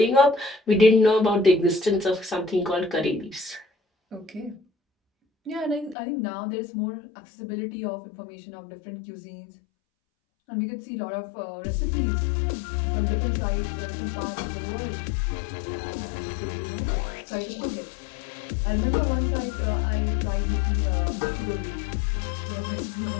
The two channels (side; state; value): right; drops out; at 6.0 s